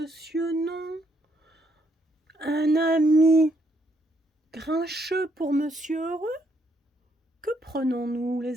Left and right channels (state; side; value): normal; both; correlation 0.73